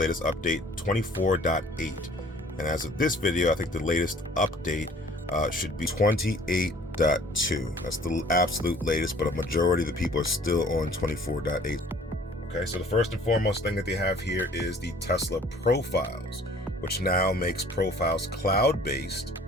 update 24.8. And as of this video, I think the latest update should be 28.2. That's the absolute latest, but a majority of the people are still on 24.8. Okay, so the first and foremost thing that they have here is the Tesla profiles, which now makes profiles cloud-based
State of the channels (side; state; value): both; normal; correlation 0.53